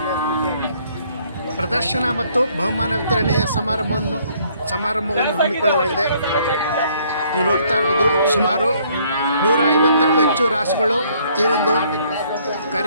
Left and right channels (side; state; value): both; inverted; correlation -0.64